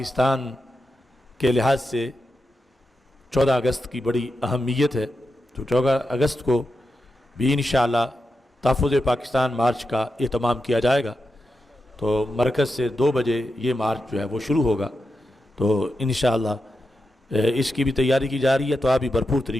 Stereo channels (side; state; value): both; normal; correlation 0.88